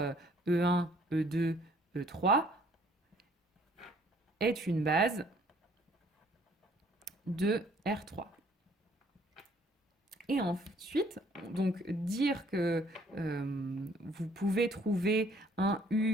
E1, E2, E3 est une base de R3. Et ensuite, donc dire que vous pouvez trouver un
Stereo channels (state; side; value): normal; both; correlation 0.60